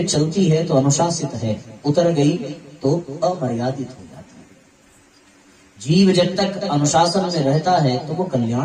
चलती है तो अनुशासित है, उतर गई तो अमर्यादित हो जाती है। जीव जब तक अनुशासन में रहता है तो वो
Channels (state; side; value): identical; both; correlation 1.00